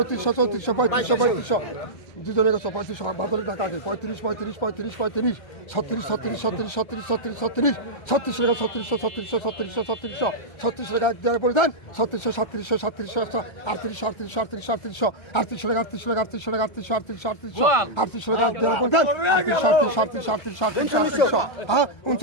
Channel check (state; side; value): late; right; 1.3 ms